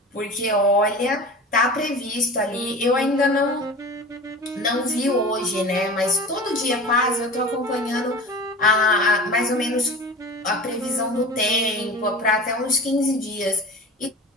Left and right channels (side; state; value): both; normal; correlation 0.35